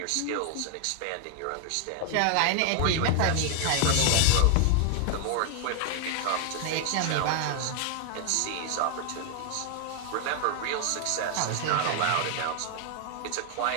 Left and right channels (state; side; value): different; both; correlation 0.00